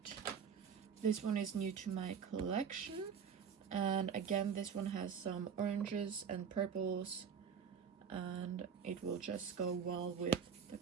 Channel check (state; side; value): quieter; left; 7.1 dB